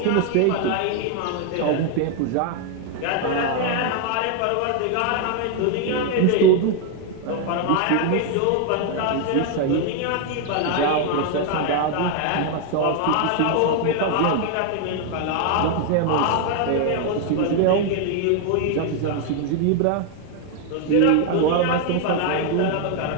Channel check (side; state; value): both; different; correlation 0.00